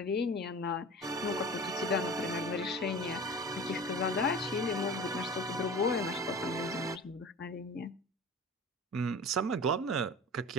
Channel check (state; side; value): normal; both; correlation 0.37